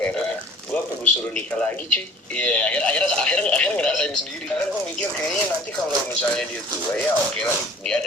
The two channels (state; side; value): normal; both; correlation 0.50